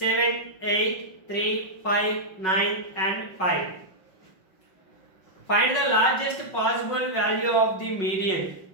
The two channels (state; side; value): late; right; 5.4 ms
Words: 8, 3, 5, 9 and 5. Find the largest possible value of the median